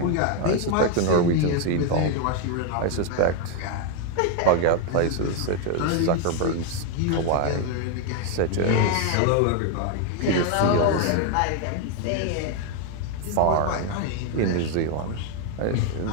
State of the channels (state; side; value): different; both; correlation 0.01